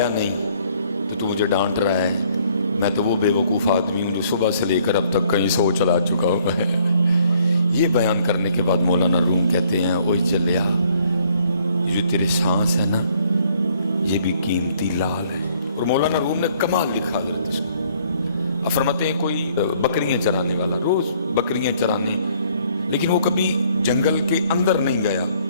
نہیں تو مجھے ڈانٹ رہا ہے، میں تو وہ بے وقوف آدمی ہوں جو صبح سے لے کر اب تک کہیں 100 چلا چکا ہوں میں۔ یہ بیان کرنے کے بعد مولانا روم کہتے ہیں اوئے چلیا، یہ جو تیرے سانس ہے نا یہ بھی قیمتی لال ہے۔ اور مولانا روم نے کمال لکھا حضرت اس کو، فرماتے ہیں کوئی بکریاں چرانے والا روز بکریاں چرانے، لیکن وہ کبھی جنگل کے اندر نہیں گیا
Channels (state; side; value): inverted; both; correlation -0.63